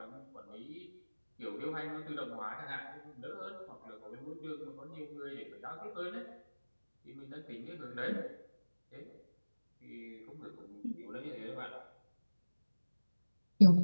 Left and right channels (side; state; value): both; inverted; correlation -1.00